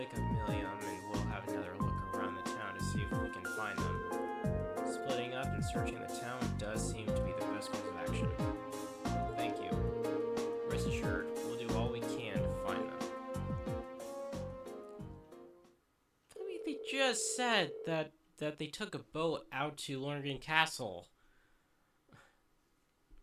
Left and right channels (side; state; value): both; identical; correlation 1.00